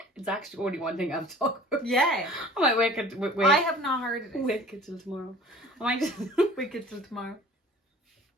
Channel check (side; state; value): both; normal; correlation 0.47